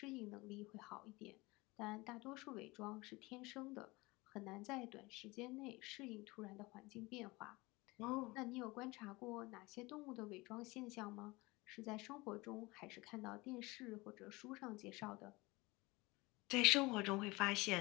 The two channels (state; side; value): quieter; right; 22.7 dB